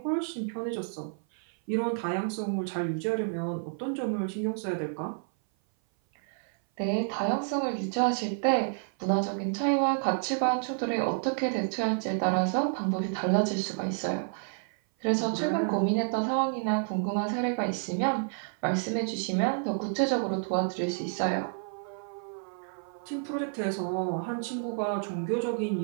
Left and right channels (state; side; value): silent; left; 56 dB below the other